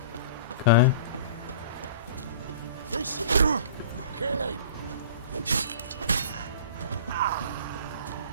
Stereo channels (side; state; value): both; inverted; correlation -0.42